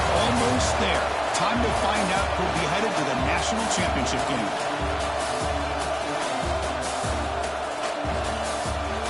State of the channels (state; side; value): identical; both; correlation 1.00